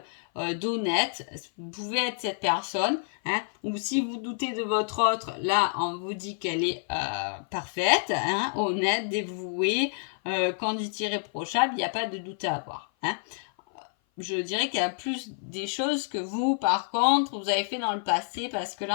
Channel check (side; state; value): right; silent; 56 dB below the other